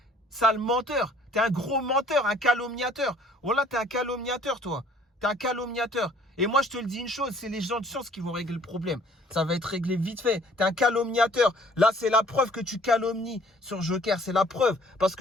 Sale menteur. T'es un gros menteur, un calomniateur. Voilà, t'es un calomniateur, toi. T'es un calomniateur. Et moi, je te le dis une chose, c'est les gens de science qui vont régler le problème. Ça va être réglé vite fait. T'es un calomniateur. Là, c'est la preuve que tu calomnies sur Joker. C'est la preuve. Parce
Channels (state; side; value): normal; both; correlation 0.56